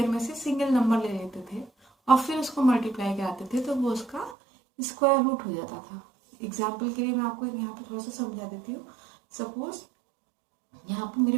में से सिंगल नंबर ले लेते थे और फिर उसको मल्टीप्लाई कराते थे, तो वो उसका स्क्वायर रूट हो जाता था। एग्जाम्पल के लिए मैं आपको यहाँ पे थोड़ा सा समझा देती हूँ। सपोज यहाँ पे मेरे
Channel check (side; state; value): left; drops out; at 4.4 s